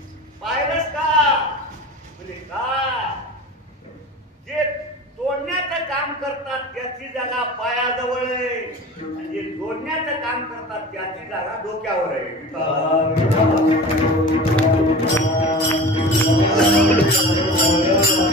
पाहिलंस का. म्हणजे काय, जे तोडण्याचं काम करतात त्याची जागा पायाजवळ आहे आणि जे जोडण्याचं काम करतात त्याची जागा डोक्यावर आहे.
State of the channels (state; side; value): normal; both; correlation 0.36